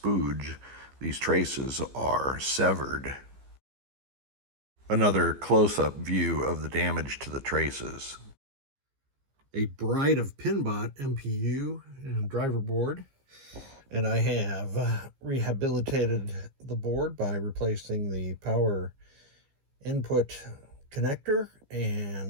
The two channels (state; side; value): late; left; 15 ms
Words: These traces are severed. Another close-up view of the damage to the traces. A Bride of PinBot MPU and driver board. And I have rehabilitated the board by replacing the power input connector